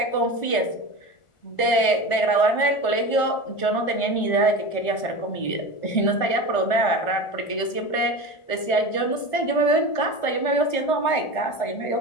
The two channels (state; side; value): late; right; 1.4 ms